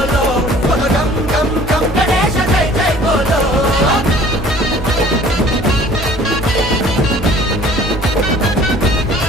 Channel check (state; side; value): normal; both; correlation 0.51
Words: బోలో గం గం గం గణేశ జై జై బోలో